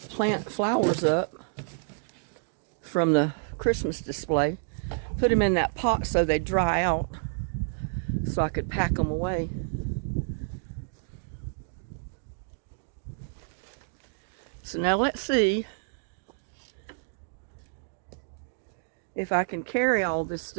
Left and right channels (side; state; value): left; silent; digital silence